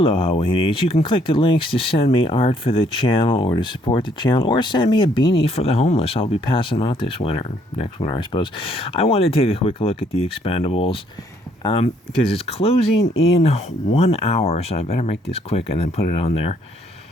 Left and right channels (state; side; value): normal; both; correlation 0.67